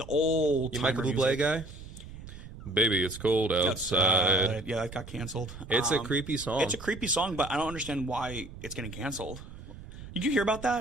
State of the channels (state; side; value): noise; right; rumble, 14 dB below the sound